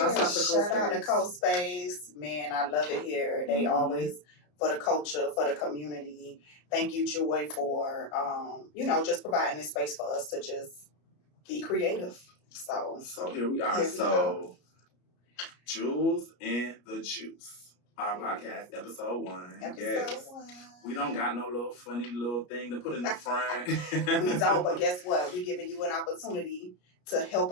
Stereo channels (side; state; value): right; late; 33 ms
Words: out to Coast Space. Man, I love it here. They always, for the culture, for the community. Thank you, Joy, for, just providing this space for us to just be creative. So here we are. Jules and the Juice. Our podcast, episode 1. Episode 1. We don't got no little funny little thing to put in the front. We don't, but guess what? We're giving you an opportunity to help